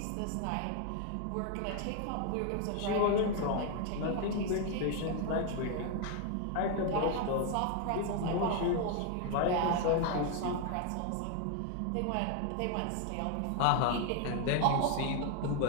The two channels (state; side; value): different; both; correlation 0.00